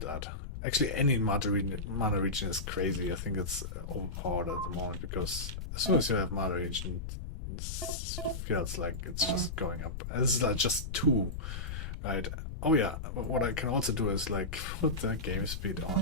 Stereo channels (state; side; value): noise; left; rumble, 6 dB below the sound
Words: that. Actually, any mana regen is crazy. I think it's overpowered at the moment, because as soon as you have mana regen, it feels like it's just going up. This is like just 2, right? Oh yeah, what I can also do is like put the game speed